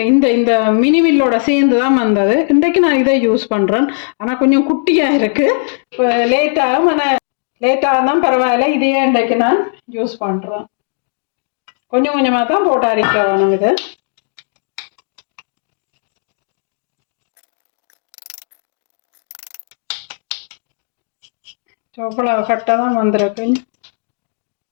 இந்த மினிமில்லோட சேர்ந்து தான் வந்தது. இன்றைக்கு நான் இதை யூஸ் பண்ணுறேன். ஆனால் கொஞ்சம் குட்டியாக இருக்குது. இப்போ லேட்டாகும், ஆனால் லேட்டாக தான் பரவாயில்ல. இதையே இன்றைக்கு நான் யூஸ் பண்ணுறேன். கொஞ்சம் கொஞ்சமாக தான் போட்டு அரைக்க வேணும். இது இவ்வளவு கட்டாக தான் வந்திருக்கு.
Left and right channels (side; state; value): right; silent; digital silence